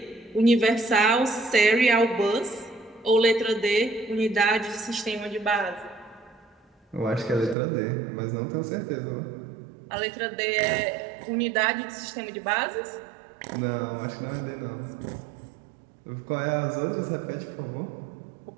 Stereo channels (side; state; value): left; drops out; at 7.6 s